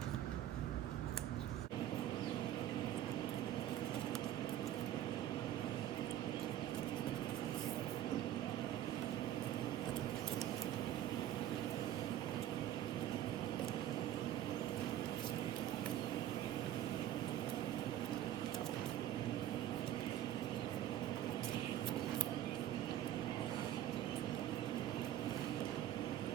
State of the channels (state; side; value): quieter; left; 11.9 dB